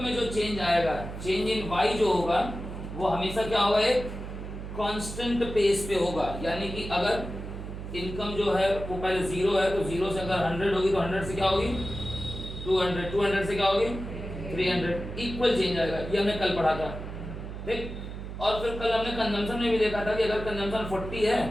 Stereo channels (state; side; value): noise; right; hum, 9 dB below the sound